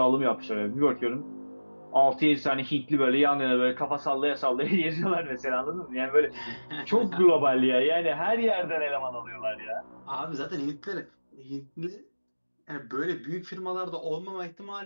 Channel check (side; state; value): both; inverted; correlation -1.00